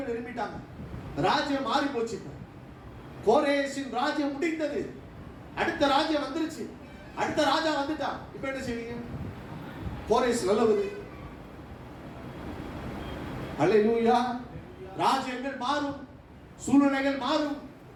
எழுப்பிட்டாங்க. ராஜ்யம் மாறி போச்சு. கோரேசின் ராஜ்யம் முடிந்தது. அடுத்த ராஜ்யம் வந்துருச்சு. அடுத்த ராஜா வந்துட்டான். இப்ப என்ன செய்வீங்க? கோரேஸ் நல்லவது. அல்லேலூயா. ராஜ்யங்கள் மாறும், சூழ்நிலைகள் மாறும்,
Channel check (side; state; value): both; identical; correlation 1.00